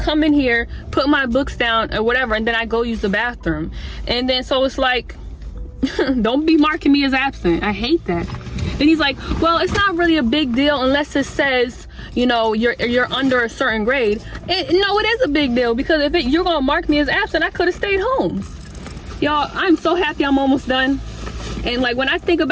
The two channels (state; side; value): identical; both; correlation 1.00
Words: in here, put my books down or whatever, and then I go use the bathroom. And then so it's like, don't be marking me as absent. I hate that. And he's like, well, it's not really a big deal unless it says, you know, you're under a certain grade. No, it is a big deal, because if you're gonna mark me as absent, I could have stayed home. Y'all, I'm so happy I'm almost done. And like, when I think